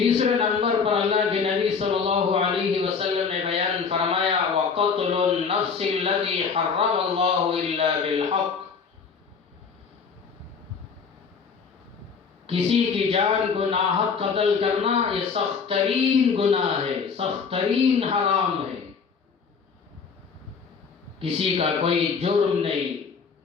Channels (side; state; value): right; quieter; 5.7 dB